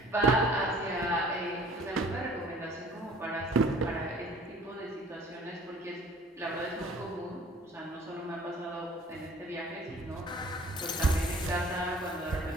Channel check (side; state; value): both; normal; correlation 0.51